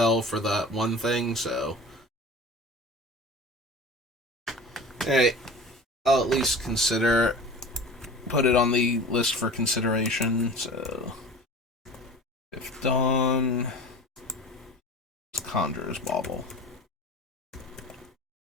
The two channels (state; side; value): normal; both; correlation 0.38